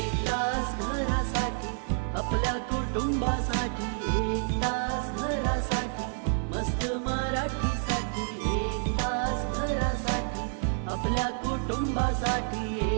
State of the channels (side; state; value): left; silent; 59 dB below the other